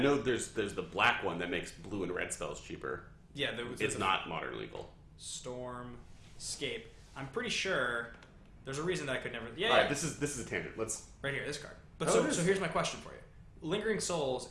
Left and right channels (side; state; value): both; identical; correlation 1.00